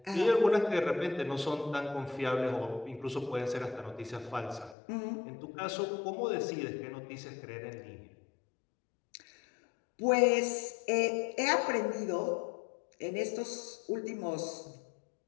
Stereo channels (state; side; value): drops out; right; at 4.8 s